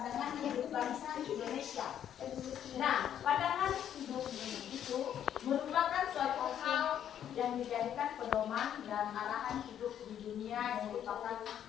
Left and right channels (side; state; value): right; quieter; 9.9 dB